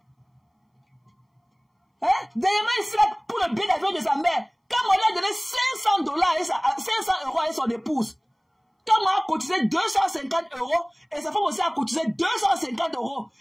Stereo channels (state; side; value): identical; both; correlation 1.00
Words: Hein? Dernièrement, ici, là, pour le billet d'avion de sa mère, quand on lui a donné $500 500 € à son épouse, quand on a cotisé 250 € et sa femme aussi a cotisé 250 €,